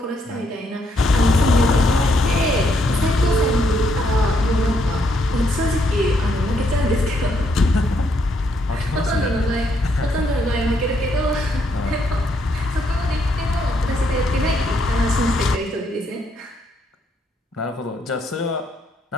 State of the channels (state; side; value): normal; both; correlation 0.74